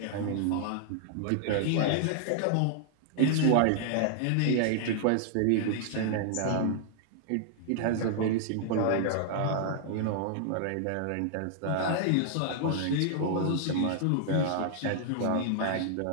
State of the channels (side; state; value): both; different; correlation -0.01